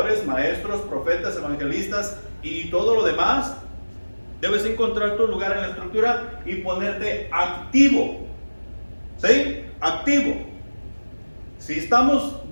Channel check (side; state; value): both; inverted; correlation -1.00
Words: maestros, profetas, evangelistas y todo lo demás. Debes encontrar tu lugar en la estructura y ponerte activo. ¿Sí? Activo. Si estamos